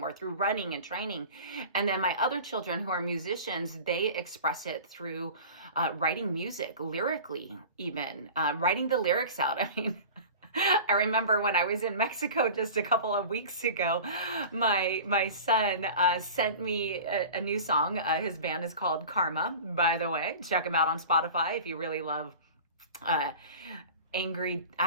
or through running and training. And then my other children who are musicians, they express it through writing music, lyrically, even writing the lyrics out. I mean, I remember when I was in Mexico just a couple of weeks ago, my son sent me a new song. His band is called Karma, by the way. Check him out on Spotify if you really love angry,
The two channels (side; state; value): both; inverted; correlation -0.37